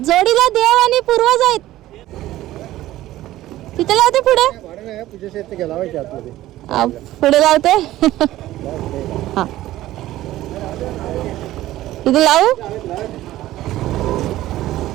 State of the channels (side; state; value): left; quieter; 15.2 dB